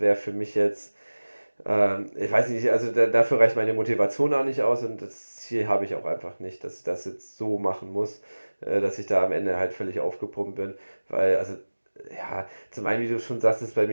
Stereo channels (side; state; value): both; inverted; correlation -1.00